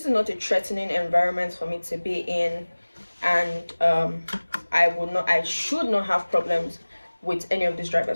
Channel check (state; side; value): inverted; both; correlation -1.00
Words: is not a threatening environment for me to be in, and I should not have problems with any of these